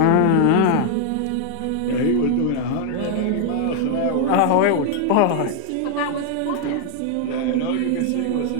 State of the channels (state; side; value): different; both; correlation 0.00